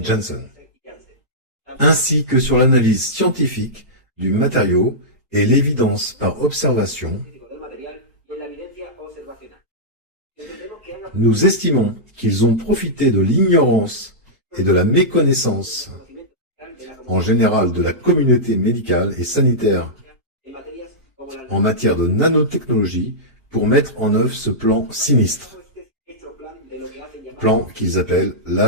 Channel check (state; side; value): normal; both; correlation -0.12